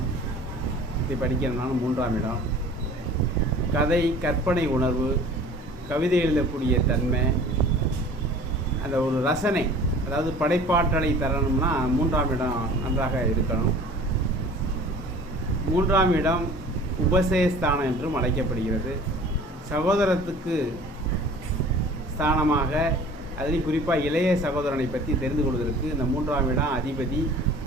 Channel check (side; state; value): both; normal; correlation 0.46